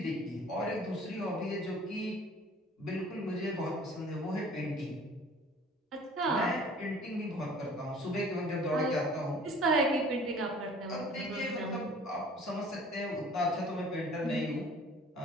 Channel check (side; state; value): both; normal; correlation 0.50